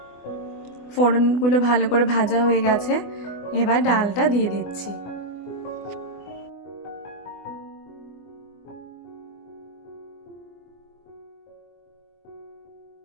ফোড়নগুলো ভালো করে ভাজা হয়ে গেছে, এবার ডালটা দিয়ে দিচ্ছি।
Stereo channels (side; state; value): right; late; 24 ms